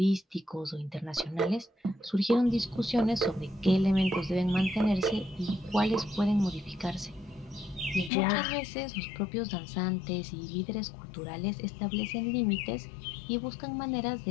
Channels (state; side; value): drops out; right; at 8.1 s